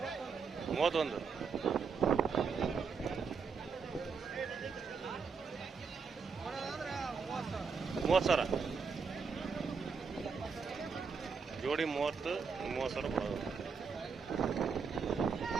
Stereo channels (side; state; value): left; quieter; 5.5 dB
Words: 31 30,000 ಜೋಡಿ 30,000 ಕೊಡೋದು.